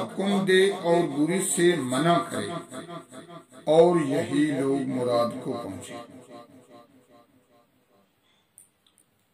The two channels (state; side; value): identical; both; correlation 1.00